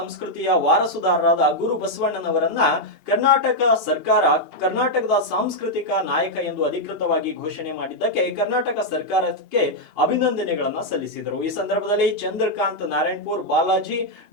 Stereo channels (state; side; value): late; left; 2.8 ms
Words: ವಾರಸುದಾರರಾದ ಗುರು ಬಸವಣ್ಣನವರನ್ನ ಕರ್ನಾಟಕ ಸರ್ಕಾರ ಕರ್ನಾಟಕದ ಸಾಂಸ್ಕೃತಿಕ ನಾಯಕ ಎಂದು ಅಧಿಕೃತವಾಗಿ ಘೋಷಣೆ ಮಾಡಿದ್ದಕ್ಕೆ ಕರ್ನಾಟಕ ಸರ್ಕಾರಕ್ಕೆ ಅಭಿನಂದನೆಗಳನ್ನ ಸಲ್ಲಿಸಿದರು. ಈ ಸಂದರ್ಭದಲ್ಲಿ ಚಂದ್ರಕಾಂತ್ ನಾರಾಯಣಪುರ್, ಬಾಲಾಜಿ,